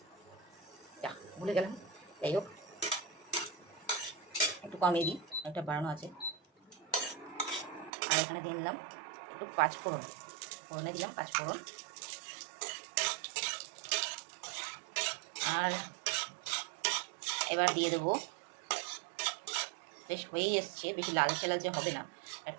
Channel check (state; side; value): drops out; left; at 7.9 s